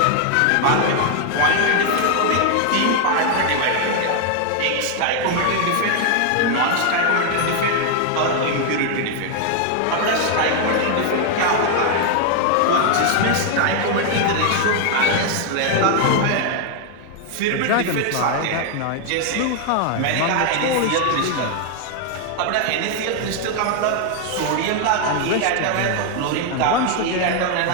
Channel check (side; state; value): both; different; correlation 0.00